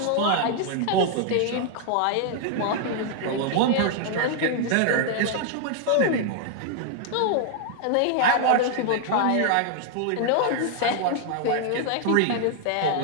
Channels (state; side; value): different; both; correlation 0.00